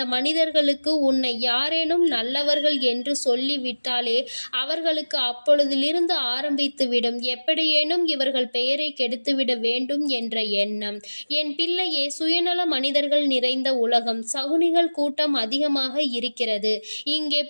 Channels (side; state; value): both; inverted; correlation -1.00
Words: மனிதர்களுக்கு உன்னை யாரேனும் நல்லவர்கள் என்று சொல்லிவிட்டாலே அவர்களுக்கு அப்பொழுதிலிருந்து ஆரம்பித்துவிடும் எப்படியேனும் இவர்கள் பெயரை கெடுத்துவிட வேண்டும் என்ற எண்ணம். என் பிள்ளையே, சுயநல மனிதர்கள் நிறைந்த உலகம், சகுனிகள் கூட்டம் அதிகமாக இருக்கிறது. இங்கே